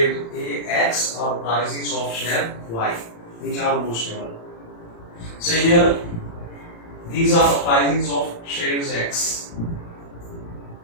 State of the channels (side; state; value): right; late; 35 ms